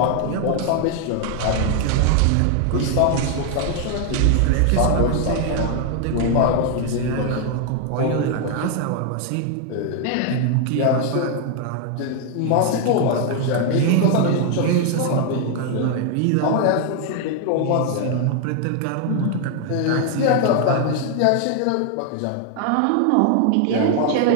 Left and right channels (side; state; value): both; different; correlation 0.00